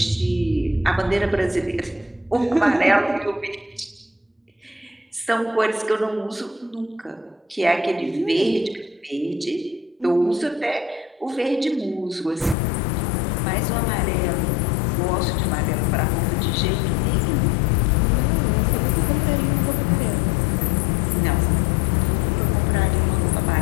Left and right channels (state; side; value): drops out; right; at 12.6 s